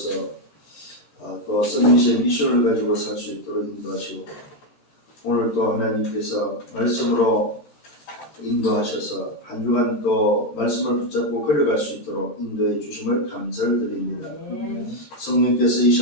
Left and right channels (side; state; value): right; late; 17 ms